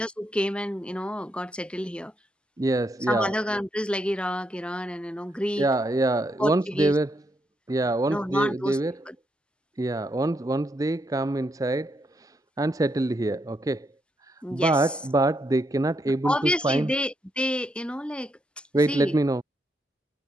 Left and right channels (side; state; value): both; normal; correlation 0.79